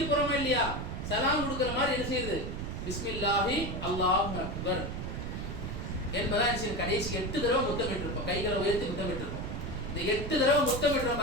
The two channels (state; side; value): noise; right; rumble, 5 dB below the sound